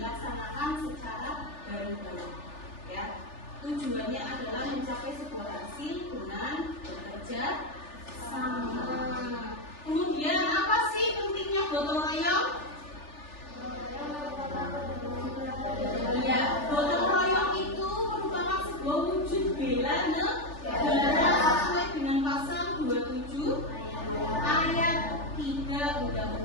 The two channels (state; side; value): late; right; 3.4 ms